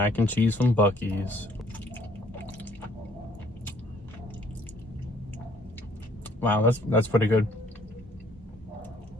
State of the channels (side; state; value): both; normal; correlation 0.61